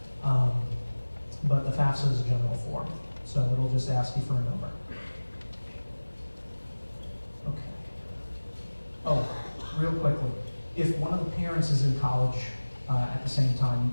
But the FAFSA is a general form, so it'll just ask you for a number. Okay. Oh, real quickly, if one of the parents is in college at the same time,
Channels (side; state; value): both; inverted; correlation -1.00